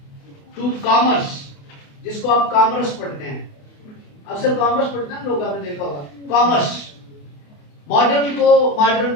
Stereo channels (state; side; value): late; right; 28 ms